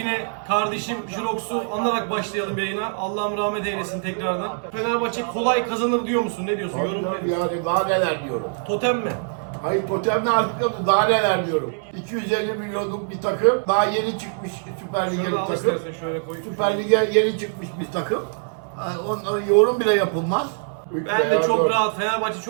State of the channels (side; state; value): left; silent; 59 dB below the other